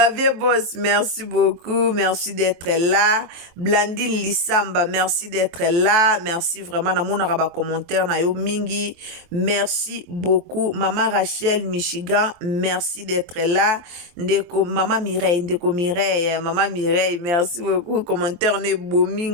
Boss, merci beaucoup. Merci d'être là. Blandine Lissamba, merci d'être là. Merci vraiment. Na mon araba commentaire na yo mingi. Merci beaucoup. Maman Rachel Michigan, merci d'être là. Ndeko Maman Mireille, Ndeko Mireille, Maman Mireille, merci beaucoup. Ne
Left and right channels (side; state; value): left; late; 23 ms